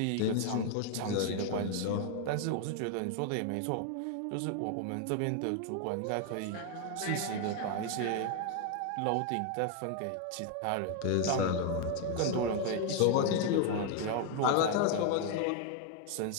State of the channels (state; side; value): different; both; correlation 0.00